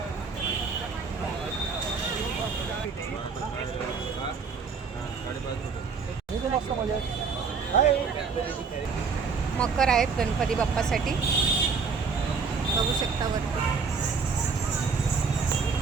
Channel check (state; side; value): quieter; left; 5.2 dB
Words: मकर आहेत गणपती बाप्पासाठी, बघू शकता वरती.